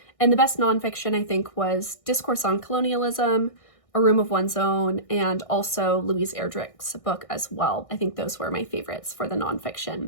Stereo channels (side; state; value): right; late; 1.6 ms